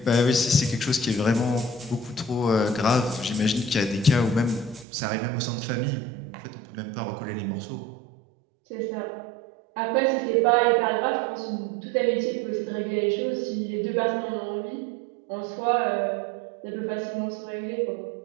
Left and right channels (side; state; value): left; drops out; at 4.9 s